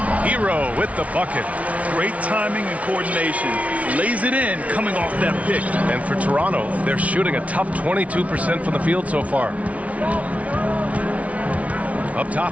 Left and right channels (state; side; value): late; left; 0.066 ms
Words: Hero with the bucket. Great timing and coordination. Lays it in coming off that pick. And for Toronto, they're shooting a tough 22% from the field so far. Up